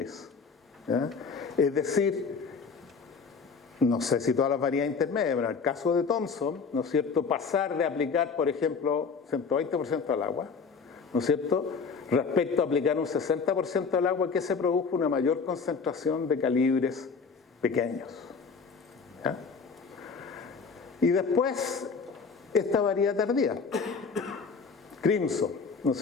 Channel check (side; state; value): right; quieter; 5.3 dB